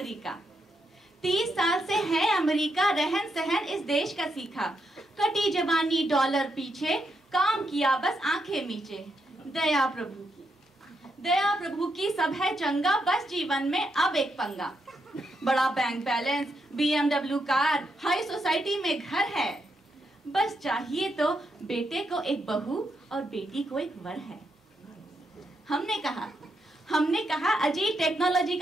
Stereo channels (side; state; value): both; normal; correlation 0.81